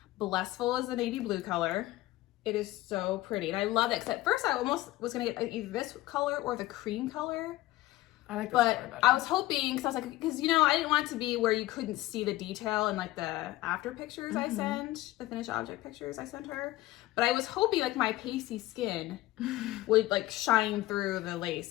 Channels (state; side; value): quieter; right; 17.2 dB